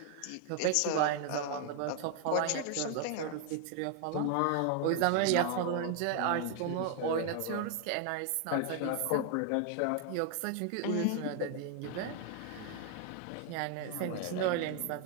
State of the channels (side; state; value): both; different; correlation 0.00